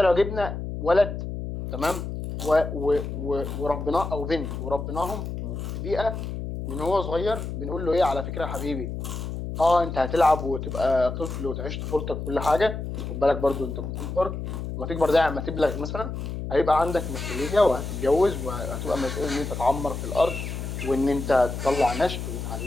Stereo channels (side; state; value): left; noise; hum, 6 dB below the sound